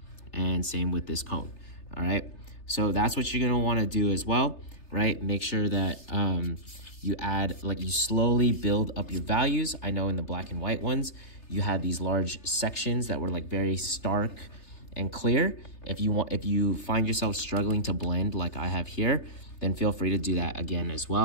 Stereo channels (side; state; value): right; late; 3.3 ms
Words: and same with this cone, all right? So that's what you're gonna wanna do as well, right? Make sure that you add, like you slowly build up your values. I know in the black and white ones, you had these large sections that were like very stark and clear. If you find yourself struggling to blend like I have here, then feel free to do that again as